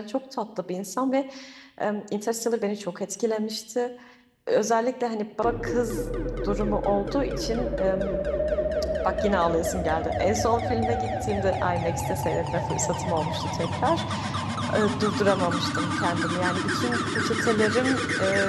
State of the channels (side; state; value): both; identical; correlation 1.00